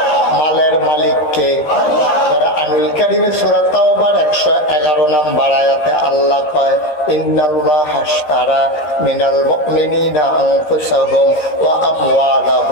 মালের মালিক কে? আনুল কারিমে সূরা তাওবার 111 নম্বর আয়াতে আল্লাহ কয়, ইন্নাল্লাহ হাশতারা মিনাল মুমিনিনা আনফুসাহুম ওয়া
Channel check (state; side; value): late; right; 13 ms